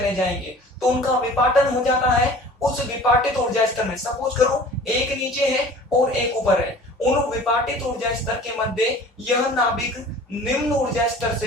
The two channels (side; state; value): both; normal; correlation 0.45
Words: जाएंगे, तो उनका विपाटन हो जाता है। उस विपाटित ऊर्जा स्तर में सपोज करो एक नीचे है और एक ऊपर है, उन विपाटित ऊर्जा स्तर के मध्य यह नाभिक निम्न ऊर्जा स्तर